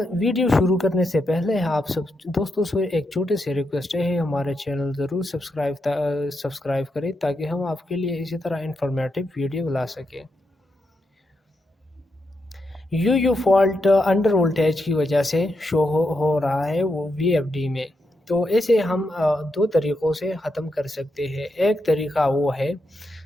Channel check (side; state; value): both; normal; correlation 0.83